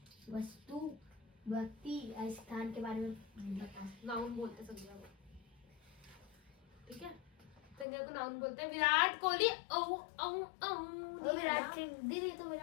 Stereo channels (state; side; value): drops out; right; at 7.9 s